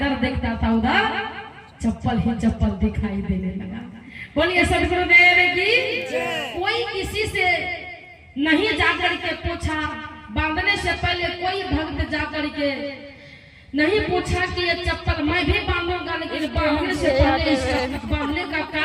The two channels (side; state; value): both; identical; correlation 1.00